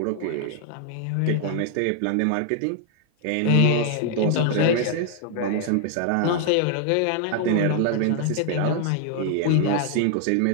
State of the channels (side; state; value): both; different; correlation 0.00